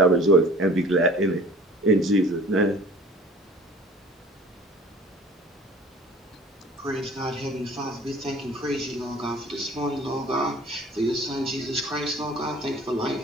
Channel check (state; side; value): normal; both; correlation 0.47